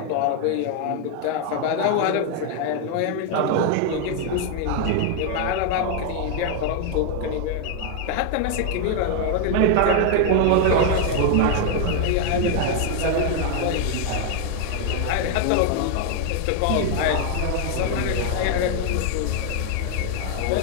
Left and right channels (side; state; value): both; different; correlation 0.00